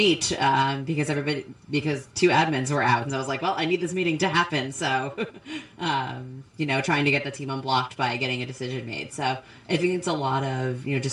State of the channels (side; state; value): both; identical; correlation 1.00